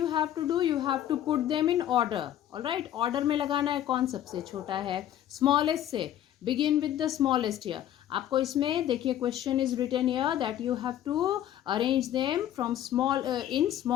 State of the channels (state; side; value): quieter; right; 11.6 dB